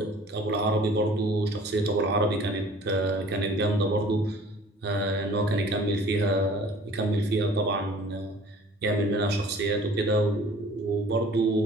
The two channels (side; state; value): both; normal; correlation 0.50